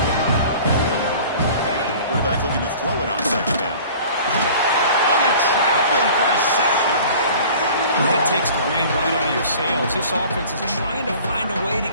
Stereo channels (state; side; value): inverted; both; correlation -0.45